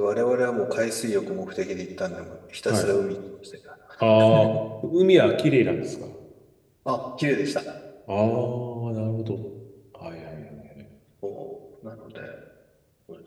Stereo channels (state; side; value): identical; both; correlation 1.00